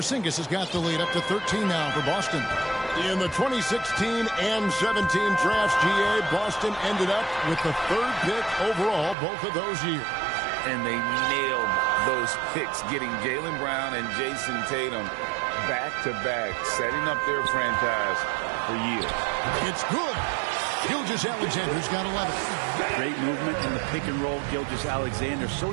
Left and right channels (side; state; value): left; drops out; at 9.2 s